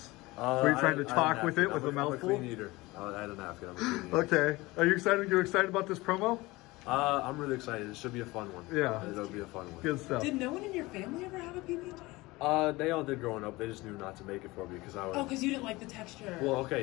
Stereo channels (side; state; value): right; quieter; 21.2 dB